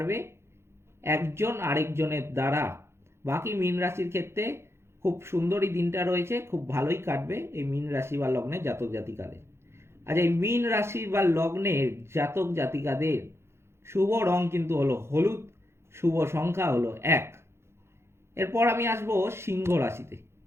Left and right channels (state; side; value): late; left; 0.12 ms